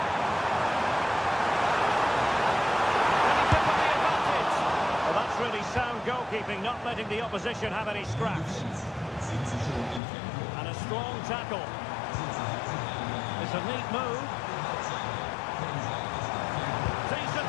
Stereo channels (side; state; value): right; drops out; at 10.0 s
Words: And he took on the advantage. Well, that's really sound goalkeeping, not letting the opposition have any scraps. And a strong tackle. It's a neat move. Decent